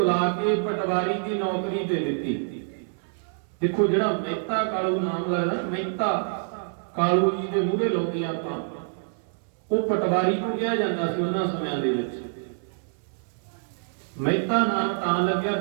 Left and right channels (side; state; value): left; silent; 61 dB below the other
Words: ਕੇ ਪਟਵਾਰੀ ਦੀ ਨੌਕਰੀ ਦੇ ਦਿੱਤੀ। ਦੇਖੋ, ਜਿਹੜਾ ਮਹਿਤਾ ਕਾਲੂ ਨਾਮ ਲੱਗਦਾ, ਮਹਿਤਾ ਕਾਲੂ ਜੀ ਦੇ ਮੂਹਰੇ ਲਾਉਂਦੇ ਆਪਾਂ, ਉਹ ਪਟਵਾਰੀ ਨੂੰ ਕਿਹਾ ਜਾਂਦਾ ਸੀ ਉਹਨਾਂ ਸਮਿਆਂ ਦੇ ਵਿੱਚ। ਮਹਿਤਾ ਨਾਮ ਤਾਂ ਲੱਗਿਆ,